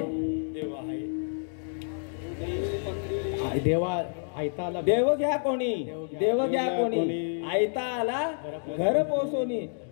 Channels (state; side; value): silent; right; digital silence